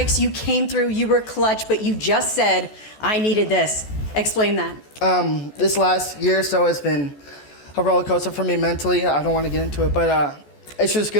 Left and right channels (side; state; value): right; late; 14 ms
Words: You came through. You were clutch, but you just said, I needed this. Explain that. This last year or so has been a roller coaster for me mentally. I don't want to get into it, but it's just